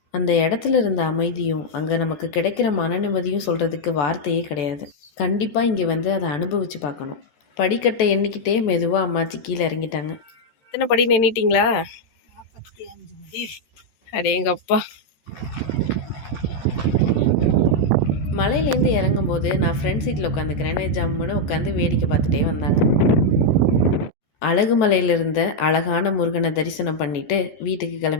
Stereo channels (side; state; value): right; late; 14 ms